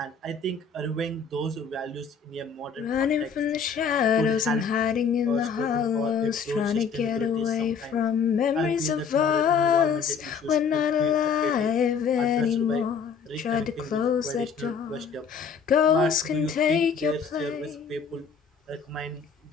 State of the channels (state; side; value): quieter; right; 6.0 dB